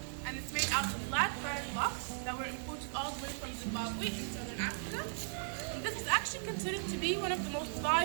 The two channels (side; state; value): left; silent; 53 dB below the other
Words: and it's made out of black granite blocks that were imported all the way from Zimbabwe in southern Africa. And this is actually considered to be one of the most